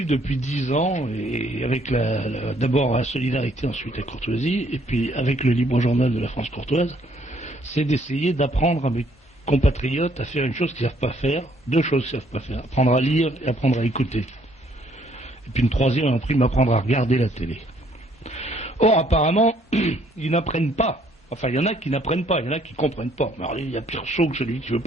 depuis 10 ans, et avec d'abord la solidarité, ensuite la courtoisie, et puis avec le libre journal de la France courtoise, c'est d'essayer d'apprendre à mes compatriotes à faire une chose qu'ils ne savent pas faire, deux choses qu'ils ne savent pas faire, apprendre à lire et apprendre à écouter. Et puis une troisième, on a appris m'apprendre à regarder la télé. Or, apparemment, ils n'apprennent pas. Enfin, il y en a qui n'apprennent pas, il y en a qui ne comprennent pas. Mais alors, il y a pire saut que celui qui ne veut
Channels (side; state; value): both; normal; correlation 0.65